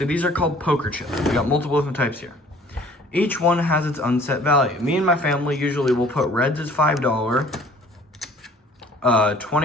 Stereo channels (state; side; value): normal; both; correlation 0.53